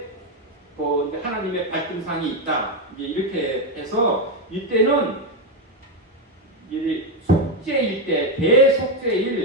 이제 하나님의 발등상이 있다. 이제 이렇게 해서 이때는 이제 속죄일 때,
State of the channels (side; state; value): both; normal; correlation 0.07